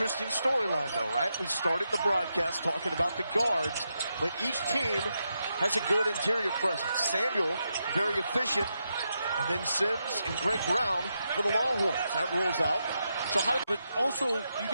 storyline, though, right? We started the broadcast talking about the guards, but each team has a good interior presence. Samuel, very efficient, and then Sims and Greg Brown for the Longhorns. That rolls out. So but also, you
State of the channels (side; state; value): both; inverted; correlation -0.85